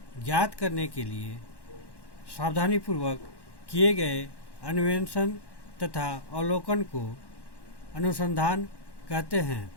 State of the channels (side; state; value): right; late; 1.1 ms